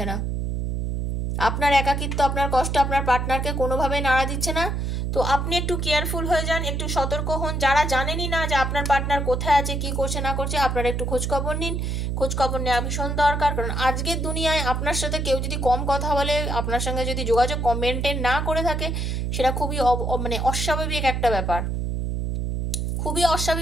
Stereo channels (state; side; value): noise; right; hum, 1 dB below the sound